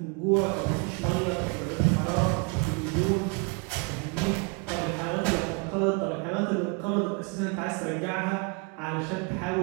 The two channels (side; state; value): left; quieter; 30.8 dB